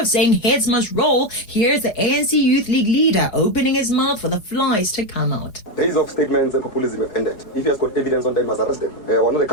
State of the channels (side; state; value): right; late; 4.8 ms